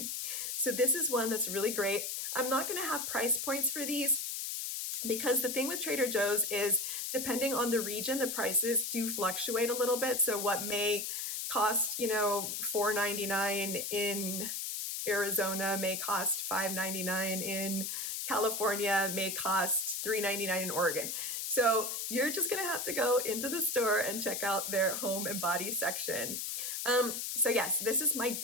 So this is one that's really great. I'm not going to have price points for these because the thing with Trader Joe's is depending on the region, the prices do fluctuate a little bit. So what may cost, $4.99 in Arizona may cost $5.99 in California, may cost $3.99 in Oregon. So you're just gonna have to go into the store and check out their home and body section. So yes, this is my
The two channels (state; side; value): noise; left; hiss, 3 dB below the sound